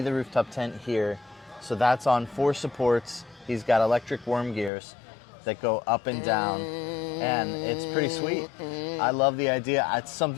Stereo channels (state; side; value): drops out; right; at 4.7 s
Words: the rooftop tent here. So that's on 4 supports. He's got electric worm gears that go up and down, and it's pretty sweet. I love the idea. It's